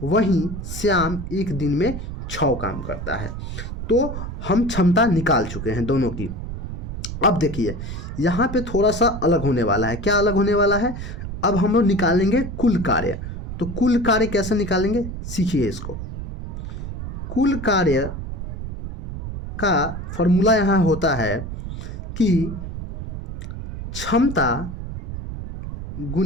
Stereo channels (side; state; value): right; noise; rumble, 7 dB below the sound